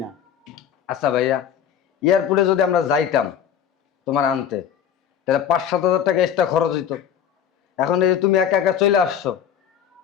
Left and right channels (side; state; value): right; quieter; 8.9 dB